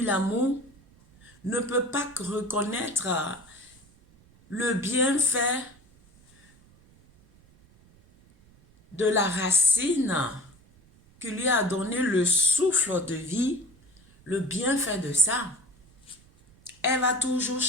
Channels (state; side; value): noise; right; rumble, 28 dB below the sound